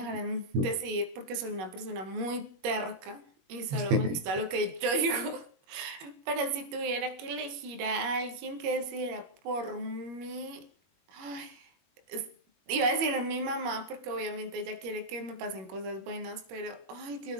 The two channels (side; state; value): left; late; 21 ms